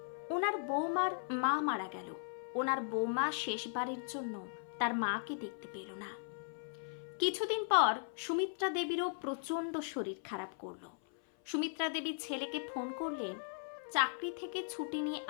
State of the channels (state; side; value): silent; right; 53 dB below the other